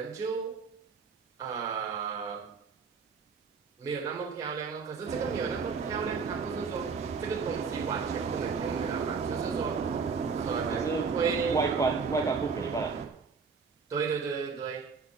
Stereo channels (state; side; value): quieter; left; 5.3 dB